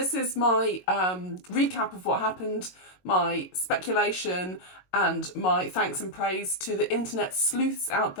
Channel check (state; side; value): late; right; 22 ms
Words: is my recap of what happened, my speculation, and my thanks and praise to the internet sleuths out